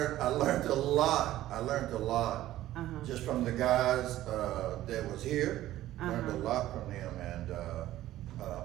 learned a lot. I learned a lot just from the guys that was here. Learned a lot from them, and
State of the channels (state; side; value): quieter; left; 14.4 dB